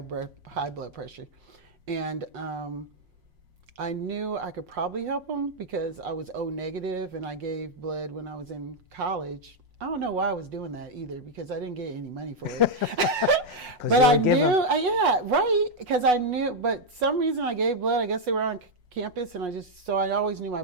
pressure. And I knew I could probably help him because I was O negative and I gave blood when I was in college. I don't know why I was doing that either because I didn't get any money for it. But I knew, because I knew, but some reason I gave blood, I guess they were on campus and I always knew my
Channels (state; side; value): late; left; 5.6 ms